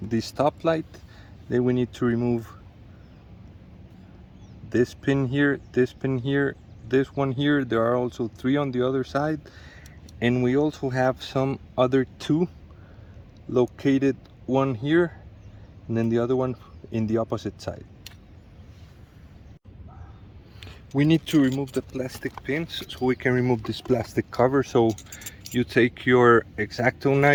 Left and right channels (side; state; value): both; identical; correlation 1.00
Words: the stoplight, then we need to remove this pin here, this pin here, this one here. There are also 3 on the other side, and we also have some other 2 located, one here and then the other one in the opposite side. We need to remove the plastic pins so we can remove this plastic cover. So you take your X-Acto